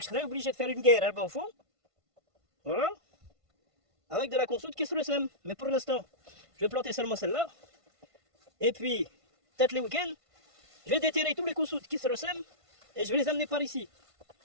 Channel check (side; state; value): left; late; 1.5 ms